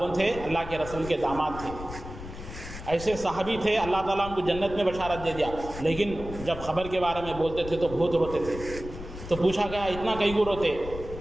تھے؟ اللہ کے رسول کے داماد تھے۔ ایسے صحابی تھے، اللہ تعالیٰ ان کو جنت میں بشارت دے دیا، لیکن جب خبر کے بارے میں بولتے تھے تو بہت روتے تھے۔ تو پوچھا گیا اتنا کئی کو روتے؟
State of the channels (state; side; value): noise; left; rumble, 11 dB below the sound